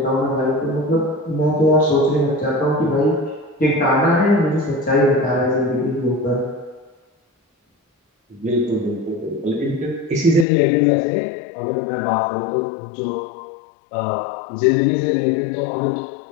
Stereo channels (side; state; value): right; drops out; at 10.5 s